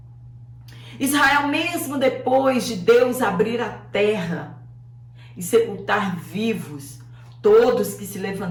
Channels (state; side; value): identical; both; correlation 1.00